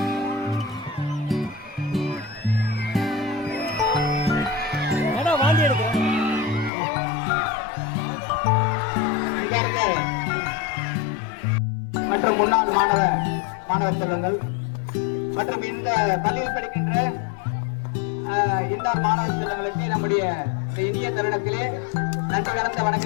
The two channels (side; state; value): right; drops out; at 6.7 s